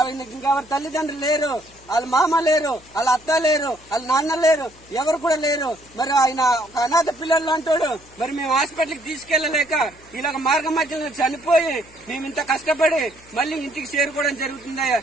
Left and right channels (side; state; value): left; noise; hum, 26 dB below the sound